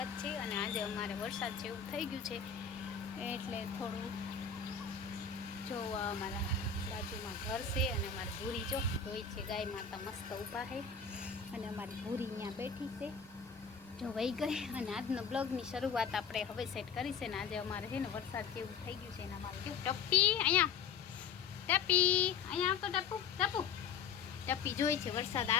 છે. અને આજે અમારે વરસાદ જેવું થઈ ગયું છે એટલે થોડું જોવા અમારા બાજુમાં ઘર છે અને અમારી ભૂરી જોઈ છે. ગાય માતા મસ્ત ઊભા છે અને અમારી ભૂરી ત્યાં બેઠી છે, જો વહી ગઈ. અને આજનો બ્લોગની શરૂઆત આપણે હવે સેટ કરી છે. ને આજે અમારે છે ને વરસાદ જેવું થઈ ગયું છે. અને અમારે જો ટપ્પી અહીંયા ટપી અહીંયા આવતો ટપુ ટપુ ટપી જોઈ છે વરસાદ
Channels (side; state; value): right; quieter; 6.4 dB